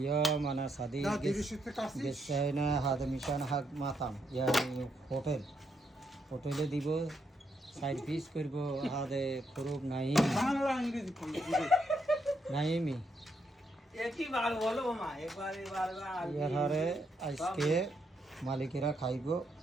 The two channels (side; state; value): both; normal; correlation 0.78